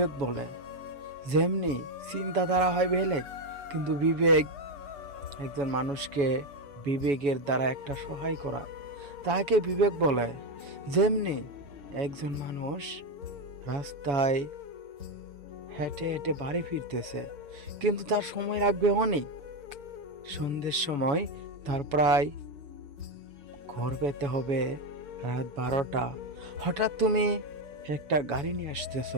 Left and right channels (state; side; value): late; left; 7.1 ms